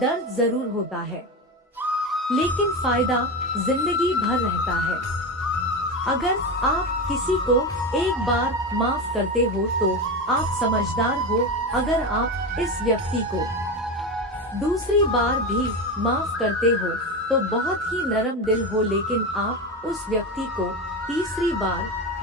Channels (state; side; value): normal; both; correlation 0.20